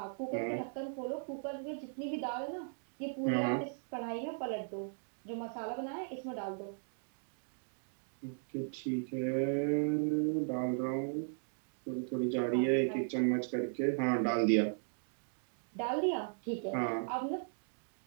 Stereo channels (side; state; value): left; silent; digital silence